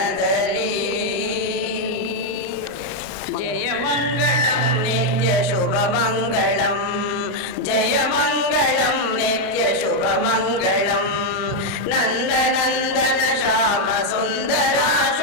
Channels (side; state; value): both; normal; correlation 0.01